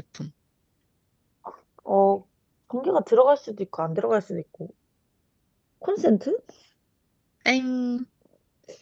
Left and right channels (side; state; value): both; identical; correlation 1.00